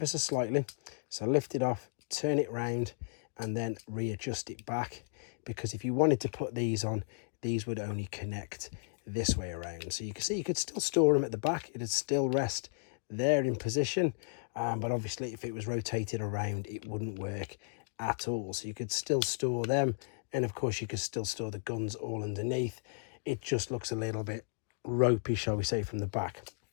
so slightly. So lift it off, turn it round, and then readjust it back. Because if you wanted to put these on, these would only connect this way around. So you can see you could still store them at the back. It'd still rest there in position. But obviously if it was rotated around, it wouldn't work at all. So you could still store them, and of course you could still store the guns all underneath. It just looks a little bit ropey, shall we say, from the back.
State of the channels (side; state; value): right; silent; digital silence